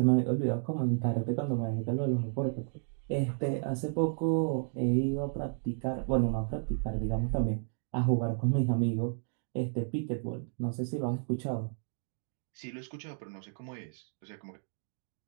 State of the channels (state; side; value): silent; left; digital silence